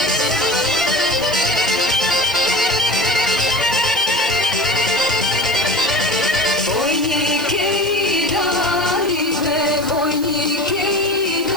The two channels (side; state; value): right; noise; hiss, 16 dB below the sound